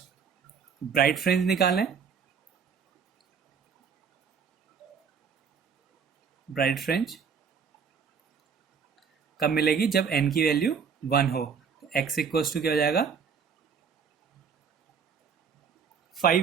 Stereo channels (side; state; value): left; quieter; 6.4 dB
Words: ब्राइट फ्रिंज निकालें, ब्राइट फ्रिंज कब मिलेगी? जब n की वैल्यू 1 हो। तो x इक्वल्स टू क्या हो जाएगा?